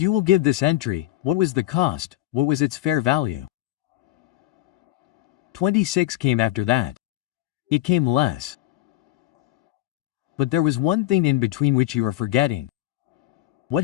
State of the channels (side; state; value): right; quieter; 15.5 dB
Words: will give this entry, what was the cost, what was its fair value? 26 came after that. It came less. But there was one thing in between which you are forgetting.